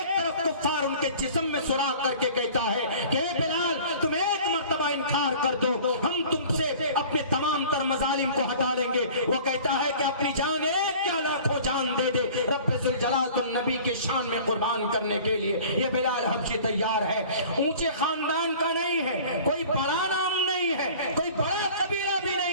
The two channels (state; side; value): inverted; both; correlation -0.45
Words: तरफ कुफ्फार उनके जिस्म में सुराख करके कहता है कि बिलाल तुम एक मर्तबा इनकार कर दो, हम तुमसे अपने तमाम तर मजालिम को हटा लेंगे। वो कहता है कि अपनी जान एक क्या लाखों जान दे दे, रब्बे जुल जलाल तो नबी की शान में कुर्बान करने के लिए ये बिलाल हबशी तैयार है। ऊंचे खानदान का नहीं है, कोई बड़ा नाम नहीं है, कोई बड़ा कबीला भी